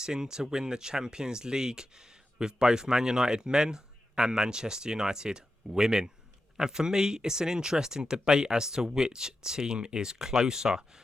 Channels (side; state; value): both; normal; correlation 0.90